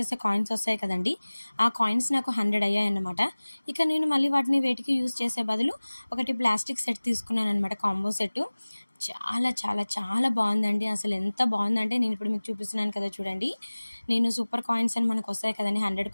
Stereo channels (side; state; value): both; inverted; correlation -1.00